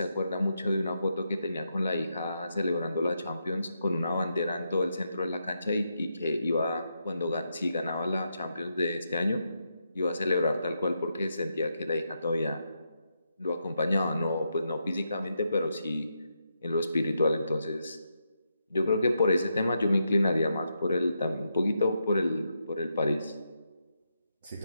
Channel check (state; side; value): inverted; both; correlation -0.83